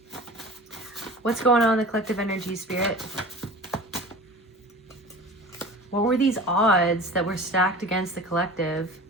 What's going on in the collective energies, Spirit? What were these odds that were stacked against the collective?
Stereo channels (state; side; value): normal; both; correlation 0.38